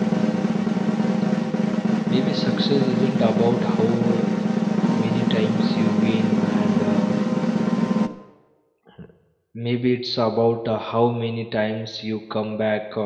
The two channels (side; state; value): both; identical; correlation 1.00